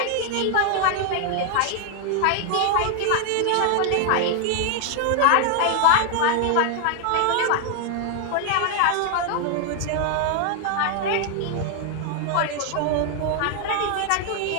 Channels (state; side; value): different; both; correlation 0.00